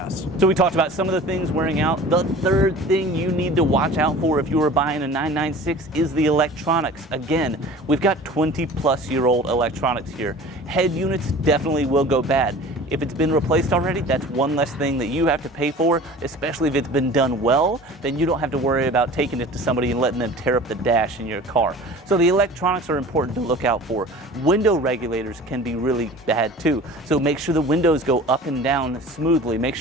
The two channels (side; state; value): both; normal; correlation 0.41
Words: So we talked about some of the things wearing out. The third thing you need to watch out for if you are buying a 996 is the electronics. Again, we've got 20-plus-year-old electronics here. Head units definitely will go bad. If it's been replaced already, that's one less thing that you have to pay for, especially if it's been done well. Then you don't have to worry about taking it to somebody and letting them tear up the dash in your car. So the electronics are important to look out for. Window regulators can be really bad too. So make sure the windows go up and down smoothly. Make